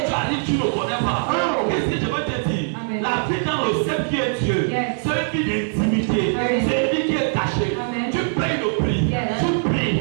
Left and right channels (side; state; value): left; silent; digital silence